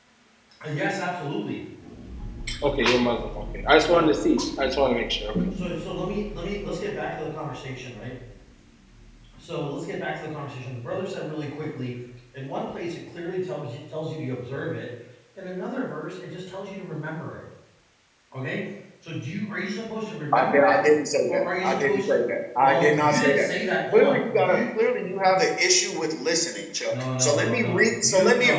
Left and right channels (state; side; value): identical; both; correlation 1.00